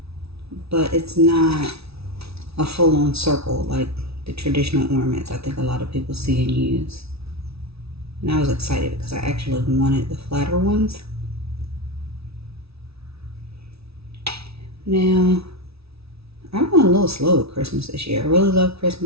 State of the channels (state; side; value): late; left; 0.78 ms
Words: But it's not a full-on circle like the traditional ornaments I think a lot of people see and use. And I was excited because I actually wanted the flatter ones. Now, I went a little slow with Christmas this year. I really love